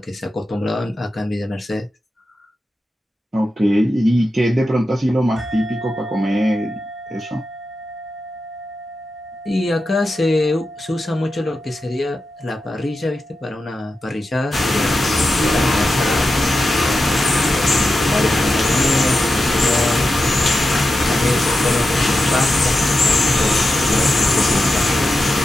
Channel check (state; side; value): normal; both; correlation 0.90